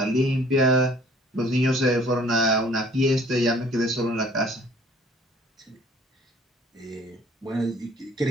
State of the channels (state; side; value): normal; both; correlation 0.54